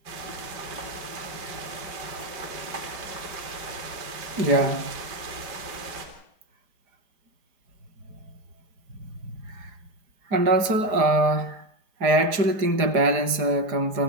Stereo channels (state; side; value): late; left; 4.9 ms